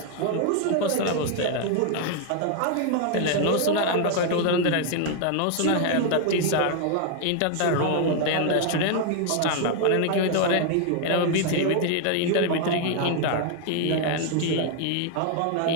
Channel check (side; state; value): both; different; correlation 0.00